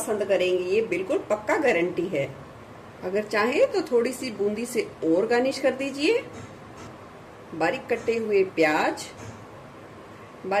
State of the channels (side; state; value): both; identical; correlation 1.00